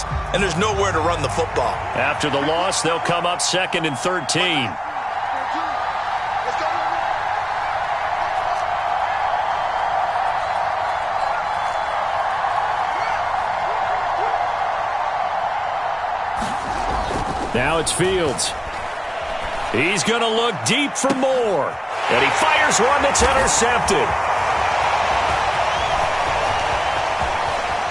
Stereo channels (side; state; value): both; identical; correlation 1.00